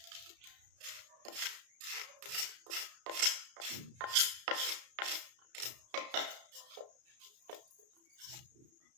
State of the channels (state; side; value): late; left; 33 ms